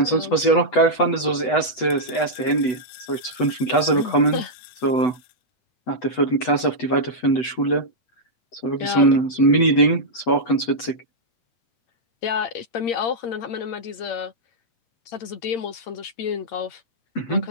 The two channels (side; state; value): right; late; 8.0 ms